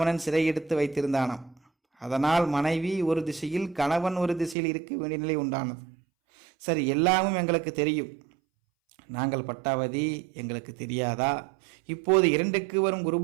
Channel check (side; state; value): left; drops out; at 4.5 s